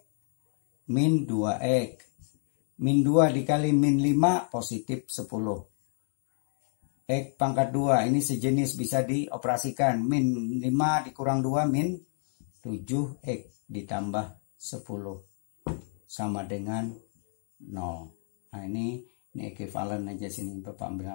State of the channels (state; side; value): silent; right; digital silence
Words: min 2X. Min 2 dikali min 5, positif 10. X pangkat 2, ini sejenis bisa dioperasikan. Min 5 dikurang 2, min 7X ditambah 10. Sama dengan 0. Nah ini ekuivalen aja sini Bapak